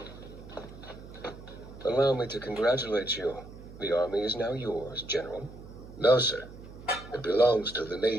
Allow me to congratulate you. The army is now yours, General. No, sir. It belongs to the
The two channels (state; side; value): noise; right; hum, 16 dB below the sound